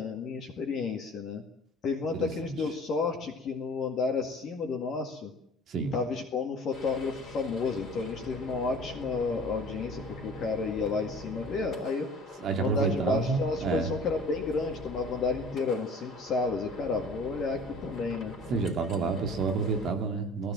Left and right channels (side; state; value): both; normal; correlation 0.45